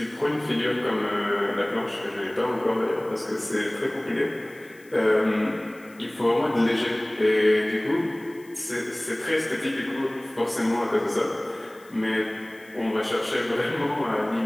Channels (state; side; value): noise; left; hiss, 27 dB below the sound